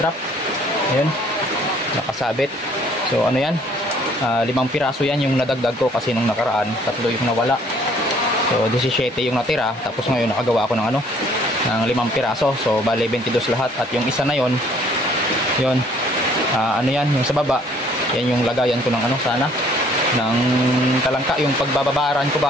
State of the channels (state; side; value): normal; both; correlation 0.60